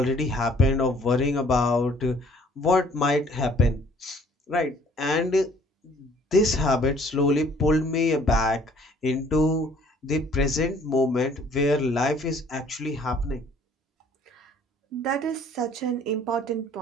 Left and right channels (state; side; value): normal; both; correlation 0.58